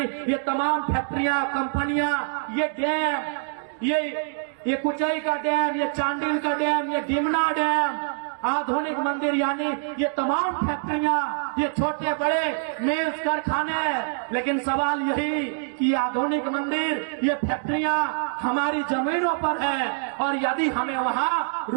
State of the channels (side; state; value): left; silent; digital silence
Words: ये तमाम फैक्ट्रियां, कंपनियां, ये डैम, ये कुचाई का डैम, ये चांडिल का डैम, ये डिमना डैम, आधुनिक मंदिर यानी ये तमाम फैक्ट्रियां, ये छोटे बड़े मिल्स कारखाने। लेकिन सवाल यही कि आधुनिक मंदिर, ये फैक्ट्रियां हमारी जमीनों पर है, और यदि हमें वहां